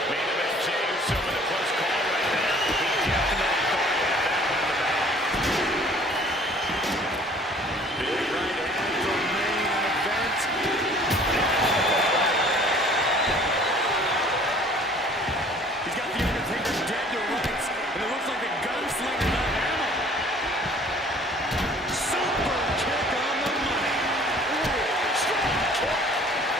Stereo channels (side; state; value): both; normal; correlation 0.53